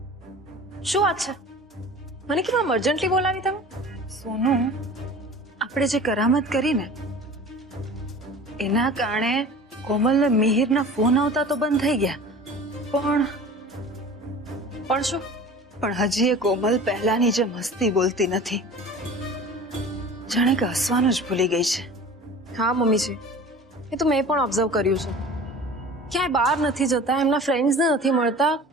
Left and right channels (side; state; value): both; normal; correlation 0.40